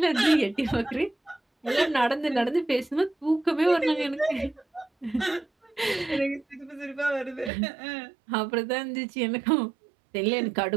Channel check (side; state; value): left; drops out; at 7.5 s